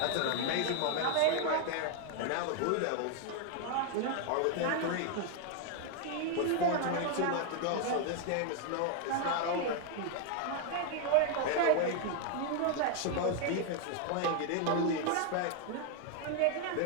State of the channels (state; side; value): different; both; correlation 0.00